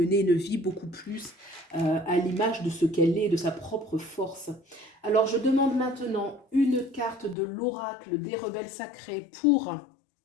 une vie beaucoup plus à l'image de ce qu'elle est, de sa propre force. Alors je demande maintenant une carte de l'oracle des rebelles sacrés pour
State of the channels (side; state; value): right; drops out; at 7.4 s